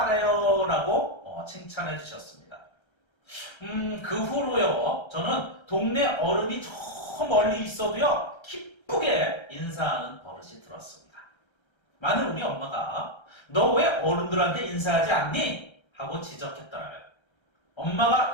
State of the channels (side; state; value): right; late; 1.3 ms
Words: 라고 칭찬해 주셨습니다. 그 후로요, 저는 동네 어른이 저 멀리 있어도요, 기쁘게 인사하는 버릇이 들었습니다. 만일 우리 엄마가 너 왜 어른들한테 인사하지 않니? 하고 지적했더라면 엄마가